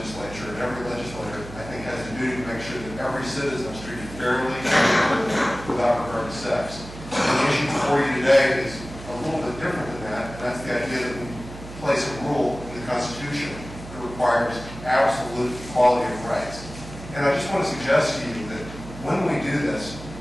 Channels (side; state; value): right; noise; hum, 13 dB below the sound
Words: and every legislator, I think, has a duty to make sure that every citizen is treated fairly without regard to sex. And the issue before you today is a little bit different than that, and that's the idea that we place a rule in the Constitution that requires absolute equality of rights. And I just want to suggest to you that when we do this,